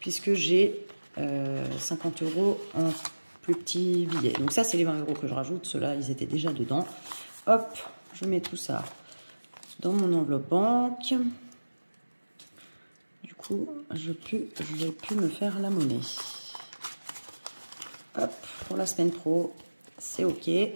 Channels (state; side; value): inverted; both; correlation -1.00